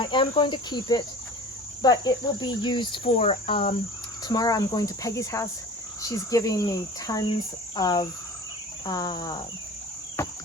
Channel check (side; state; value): both; normal; correlation 0.40